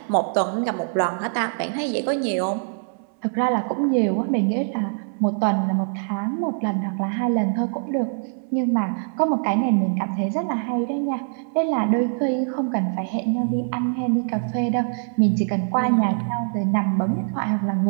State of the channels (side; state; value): left; silent; 62 dB below the other